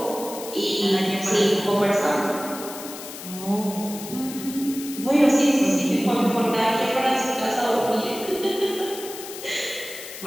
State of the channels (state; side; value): noise; left; hiss, 12 dB below the sound